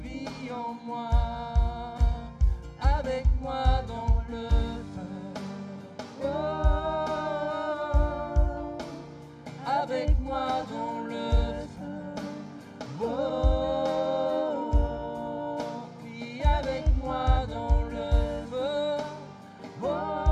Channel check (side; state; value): both; identical; correlation 1.00